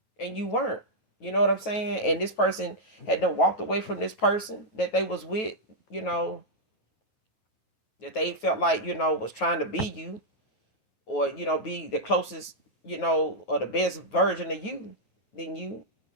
and you weren't. You know what I'm saying? And this person had done walked away from this person that they was with, you know, that they felt like, was trying to be you, or, be the closest, or the best version of you than you.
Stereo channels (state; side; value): late; right; 9.3 ms